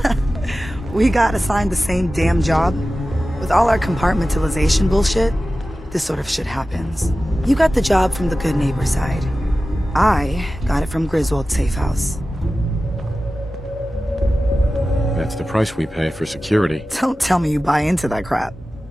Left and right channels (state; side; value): normal; both; correlation 0.95